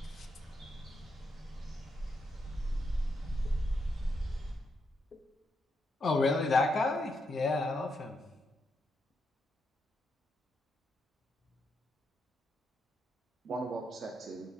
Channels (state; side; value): normal; both; correlation 0.82